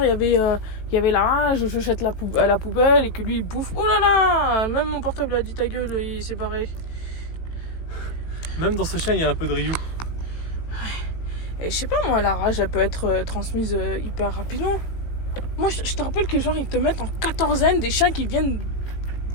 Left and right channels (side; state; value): right; late; 18 ms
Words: il y avait la rage, je jette à la poubelle et que lui il bouffe. Oh là là, même mon portable a dit ta gueule, il s'est barré. Même dans ce chien, il y a un peu de Ryu. Et je sais pas moi, la rage elle peut être transmise hyper rapidement. Moi je te rappelle que genre ils te mettent en quatorzaine des chiens qui viennent